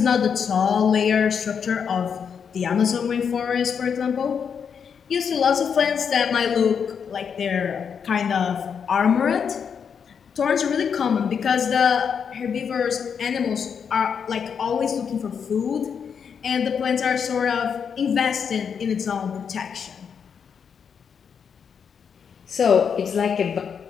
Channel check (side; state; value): right; quieter; 6.9 dB